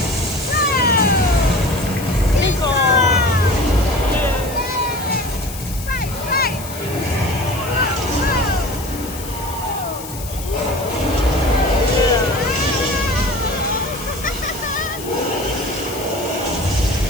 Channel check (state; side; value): noise; left; hiss, 13 dB below the sound